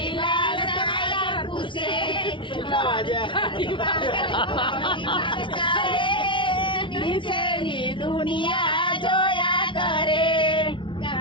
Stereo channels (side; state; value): right; late; 0.24 ms